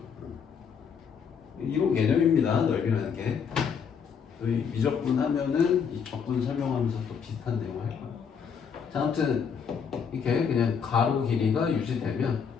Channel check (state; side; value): quieter; right; 6.7 dB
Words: 이런 개념입니다. 넓이라는 게. 저희 미적분 하면은 이 적분 설명하면서 또 비슷한 내용을 할 거예요. 자, 아무튼 이렇게 그냥 가로 길이가 유지되면